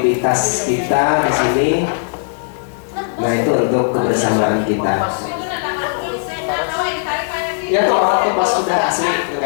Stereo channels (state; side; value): silent; right; digital silence